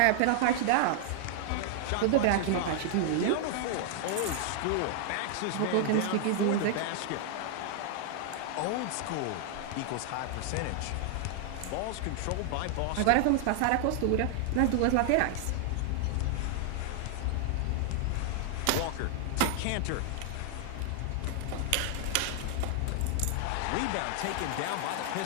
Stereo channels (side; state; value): both; different; correlation 0.00